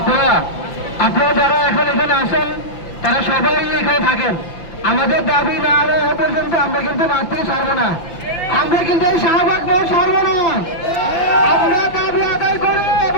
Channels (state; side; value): late; right; 5.8 ms